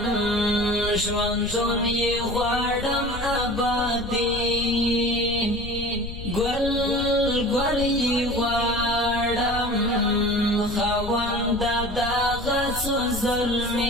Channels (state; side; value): noise; left; rumble, 9 dB below the sound